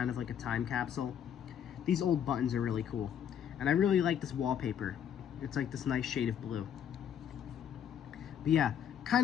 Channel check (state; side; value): quieter; right; 8.9 dB